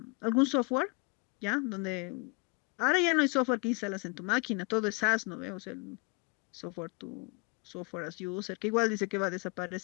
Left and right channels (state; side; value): quieter; right; 30.6 dB